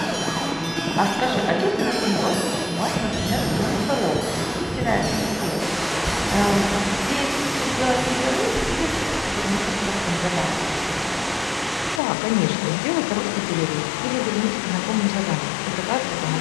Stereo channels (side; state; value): right; drops out; at 12.0 s